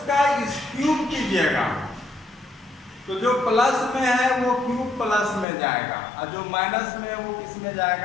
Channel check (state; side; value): drops out; right; at 5.5 s